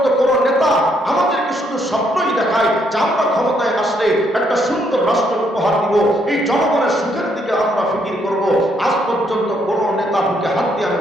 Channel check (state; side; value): normal; both; correlation 0.72